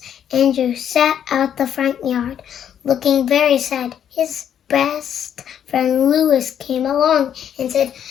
Andrew sat out the front yard, looking very sad. His best friend Louis came along and said,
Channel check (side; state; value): right; quieter; 9.3 dB